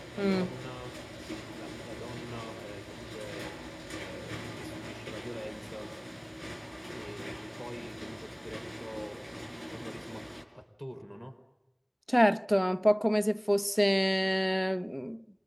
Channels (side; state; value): both; identical; correlation 1.00